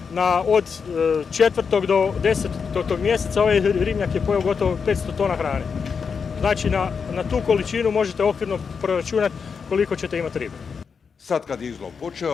od 4. do 10. mjeseca ovaj ribnjak je pojeo gotovo 500 tona hrane. Znači na tu količinu možete okvirno proračunati koliko ćete imati ribe. Sad kad je izlov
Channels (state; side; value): quieter; right; 5.9 dB